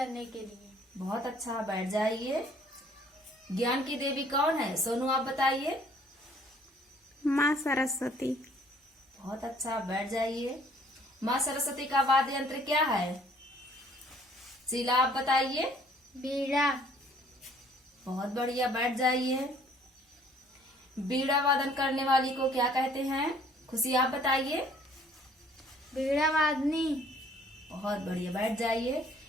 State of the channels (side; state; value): both; normal; correlation 0.58